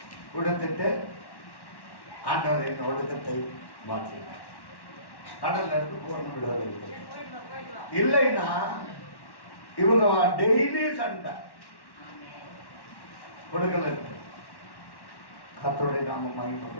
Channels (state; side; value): late; right; 1.1 ms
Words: கொடுத்துட்டு ஆண்டவர் என் ஒடுக்கத்தை மாற்றினார். கடல்ல இருந்து பூர்ண விடுதலை இல்லைன்னா இவங்க டெய்லி சண்டை கொடுக்கல இருக்கு. கர்த்தருடைய நாமம்